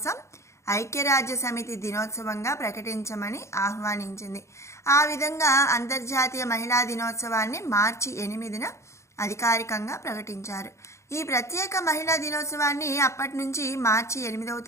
ఐక్యరాజ్య సమితి దినోత్సవంగా ప్రకటించమని ఆహ్వానించింది. ఆ విధంగా అంతర్జాతీయ మహిళా దినోత్సవాన్ని మార్చి 8న అధికారికంగా ప్రకటించారు. ఈ ప్రత్యేక మహిళా దినోత్సవాన్ని అప్పటి నుంచి మార్చి 8వ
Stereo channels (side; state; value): right; late; 0.14 ms